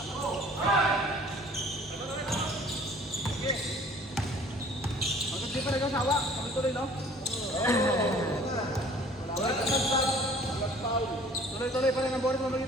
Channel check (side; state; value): both; normal; correlation 0.52